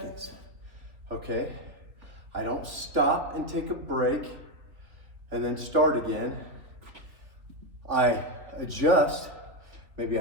okay? I don't stop and take a break and then start again. I adjust, maybe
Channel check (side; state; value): left; late; 3.4 ms